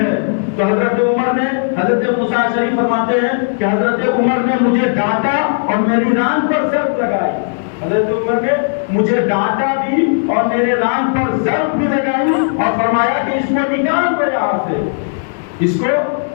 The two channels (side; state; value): right; silent; digital silence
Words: تو حضرت عمر نے، حضرت موسیٰ اشعری فرماتے ہیں کہ حضرت عمر نے مجھے ڈانٹا اور میری ران پر ضرب لگائی، حضرت عمر نے مجھے ڈانٹا بھی اور میرے ران پر ضرب بھی لگائی اور فرمایا کہ اس کو نکال دو یہاں سے، اس کو